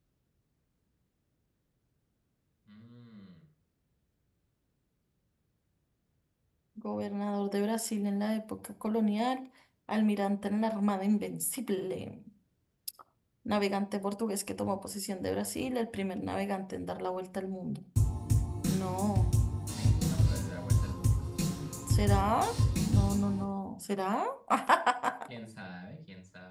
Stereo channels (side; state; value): both; identical; correlation 1.00